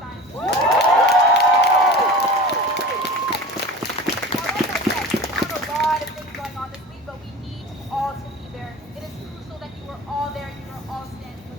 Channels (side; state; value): both; normal; correlation 0.36